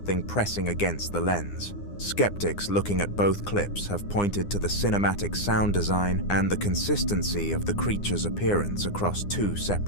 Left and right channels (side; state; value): right; late; 9.8 ms